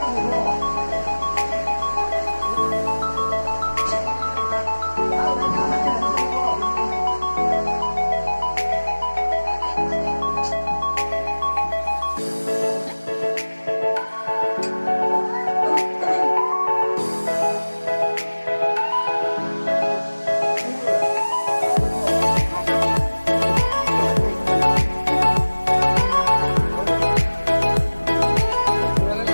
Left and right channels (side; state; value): both; inverted; correlation -1.00